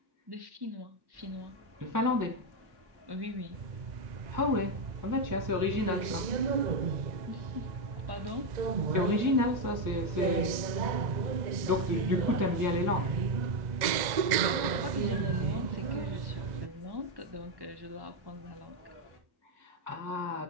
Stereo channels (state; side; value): late; left; 1.9 ms